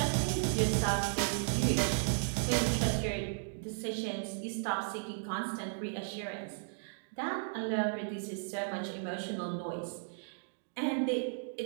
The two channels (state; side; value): silent; left; digital silence